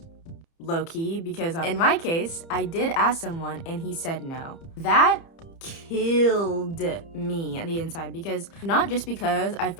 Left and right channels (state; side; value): late; right; 30 ms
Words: low-key, because in my case, I did ask someone and he said no. That killed me on the inside, because not just because I